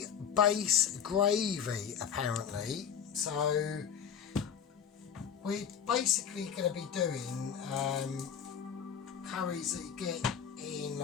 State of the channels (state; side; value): quieter; right; 7.9 dB